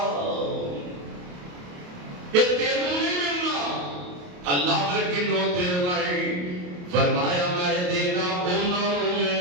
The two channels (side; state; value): left; late; 28 ms